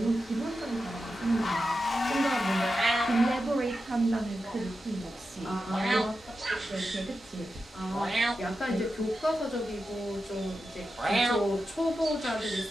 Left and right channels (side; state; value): both; normal; correlation 0.90